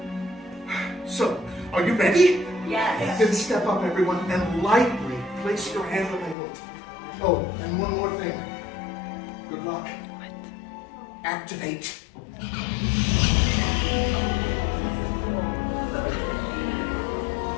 So, are you ready? Yes. Then step up, everyone, and lightly place your hand on the hilt. Oh, and one more thing. Good luck. Activate.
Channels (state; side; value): drops out; right; at 6.4 s